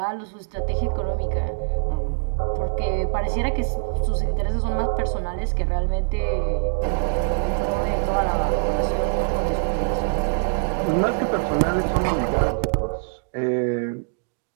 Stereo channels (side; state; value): left; silent; digital silence